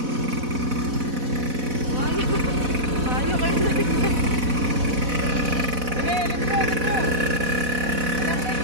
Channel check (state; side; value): late; left; 4.1 ms